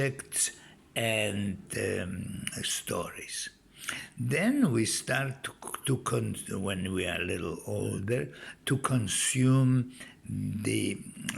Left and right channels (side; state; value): both; identical; correlation 1.00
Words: and stories. Then we start when we are a little older, to consume the